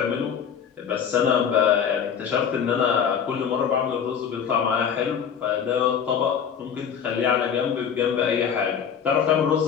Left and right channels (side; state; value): right; quieter; 7.7 dB